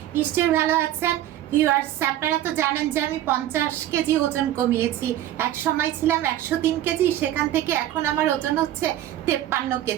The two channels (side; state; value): left; quieter; 12.8 dB